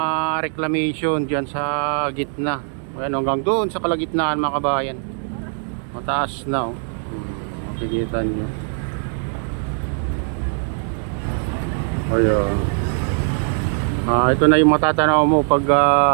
reclamation dyan sa gitna. Ayan, hanggang doon sa kalagitnaan mga kabayan, mataas na makikita nyo. Ayan. Ito na yung matatanaw mo pag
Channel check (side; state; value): left; silent; 57 dB below the other